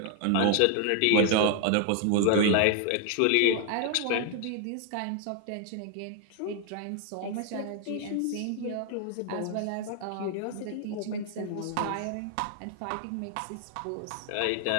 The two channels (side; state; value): both; different; correlation 0.00